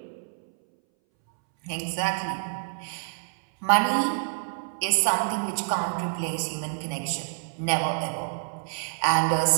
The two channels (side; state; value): left; silent; 60 dB below the other